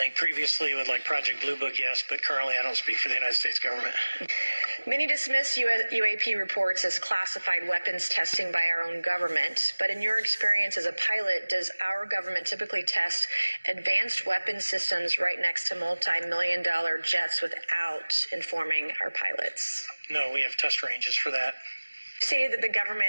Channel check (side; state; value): both; inverted; correlation -1.00